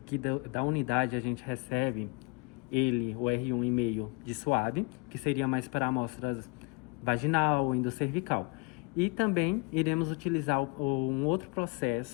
que da unidade a gente recebe o R1,5 de suave, que seria mais para amostras vaginal, endocervical. E também iremos utilizar um outro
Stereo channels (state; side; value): quieter; right; 29.7 dB